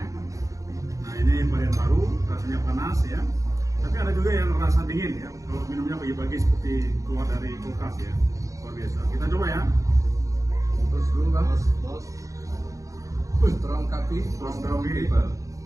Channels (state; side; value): late; left; 0.16 ms